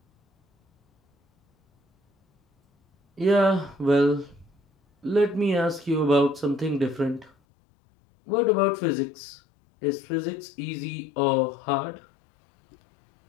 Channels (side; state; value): right; drops out; at 7.3 s